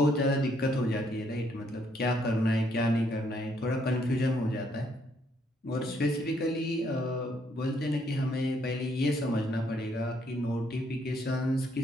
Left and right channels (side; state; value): both; normal; correlation 0.70